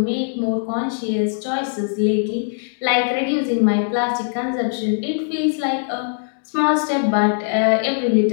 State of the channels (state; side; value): silent; right; digital silence